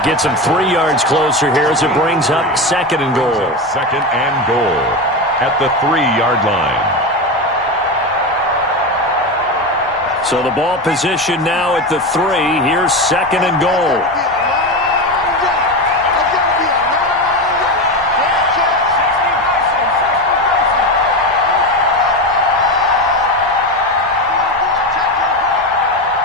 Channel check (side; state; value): both; normal; correlation 0.18